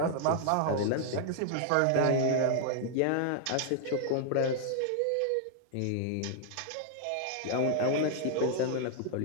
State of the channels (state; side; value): different; both; correlation 0.00